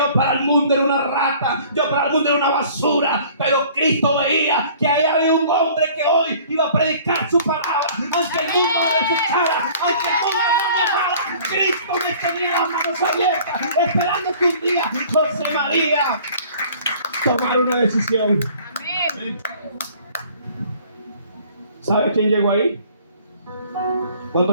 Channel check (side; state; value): both; inverted; correlation -0.51